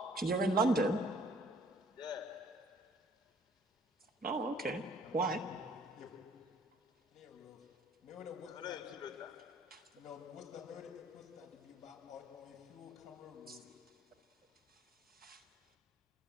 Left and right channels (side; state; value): both; normal; correlation 0.59